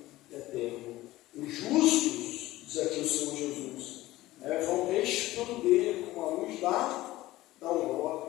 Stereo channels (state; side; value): quieter; right; 17.1 dB